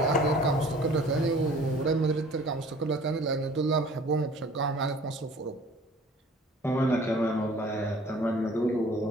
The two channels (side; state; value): both; normal; correlation 0.50